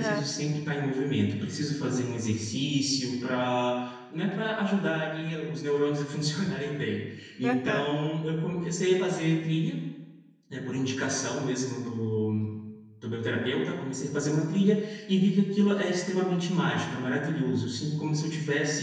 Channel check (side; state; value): both; identical; correlation 1.00